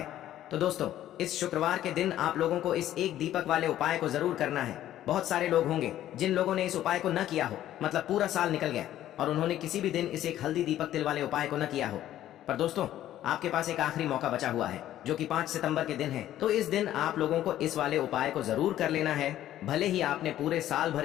तो दोस्तों, इस शुक्रवार के दिन आप लोगों को इस एक दीपक वाले उपाय को जरूर करना है। बहुत सारे लोग होंगे जिन लोगों ने इस उपाय को न किया हो, मतलब पूरा साल निकल गया और उन्होंने किसी भी दिन इस एक हल्दी दीपक तिल वाले उपाय को न किया हो। पर दोस्तों, आपके पास एक आखिरी मौका बचा हुआ है, जो कि 5 सितंबर के दिन है। तो इस दिन आप लोगों को इस वाले उपाय को जरूर कर लेना है। भले ही आपने पूरे साल भर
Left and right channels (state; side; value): quieter; right; 12.7 dB